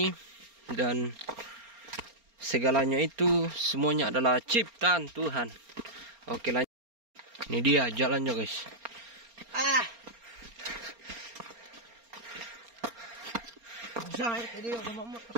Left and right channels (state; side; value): late; left; 4.3 ms